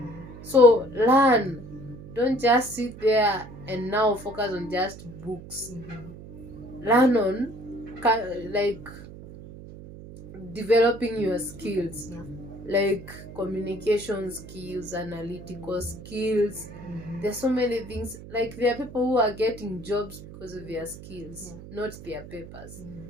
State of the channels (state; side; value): noise; right; hum, 15 dB below the sound